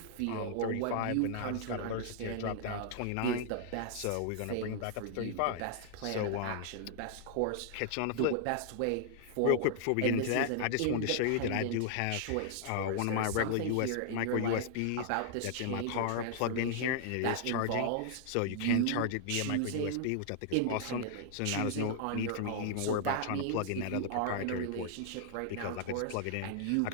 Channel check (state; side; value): different; both; correlation -0.01